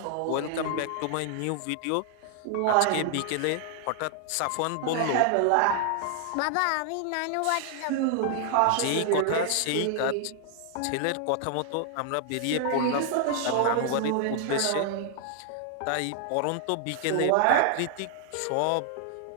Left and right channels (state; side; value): different; both; correlation 0.00